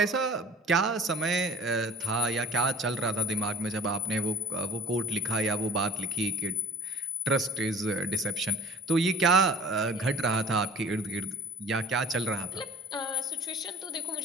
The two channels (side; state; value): both; normal; correlation 0.47